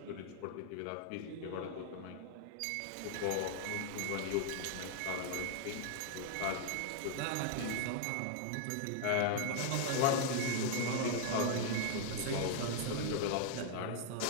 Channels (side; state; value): both; different; correlation 0.00